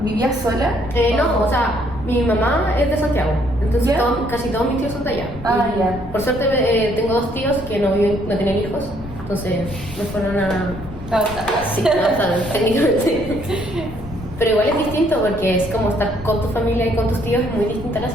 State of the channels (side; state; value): left; noise; rumble, 13 dB below the sound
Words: ¿Vivías sola? No, o sea, mi mamá es de Santiago, entonces ¿Ya? casi todos mis tíos son de allá. Y Ya. por suerte tengo 2 tíos que no tienen hijos, entonces me fueron a... Sí, técnicamente. Pero igual es distinto porque es como estar con tu familia y con tus tíos, es muy distinta la